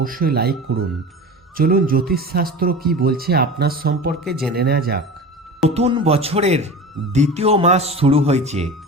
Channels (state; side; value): normal; both; correlation 0.33